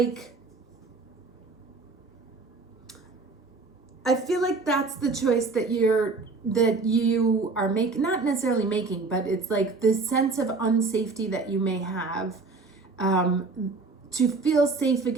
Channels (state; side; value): quieter; left; 4.0 dB